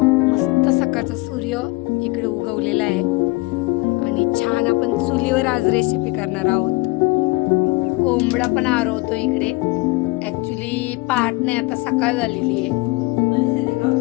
मस्त सकाळचा सूर्य इकडे उगवलेला आहे आणि छान आपण चुलीवर आज रेसिपी करणार आहोत। कोंबडा पण आरवतो इकडे। ॲक्च्युली पहाट नाही, आता सकाळ झालेली आहे।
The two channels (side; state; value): right; quieter; 23.8 dB